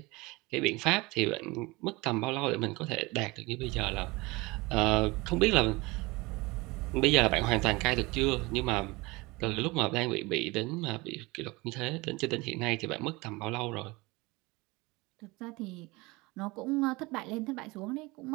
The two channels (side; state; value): left; quieter; 23.5 dB